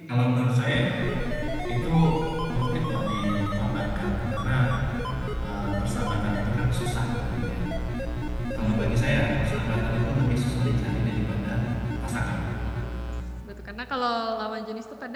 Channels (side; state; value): both; identical; correlation 1.00